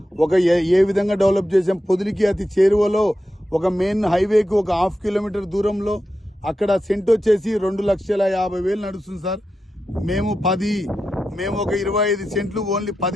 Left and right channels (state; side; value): normal; both; correlation 0.89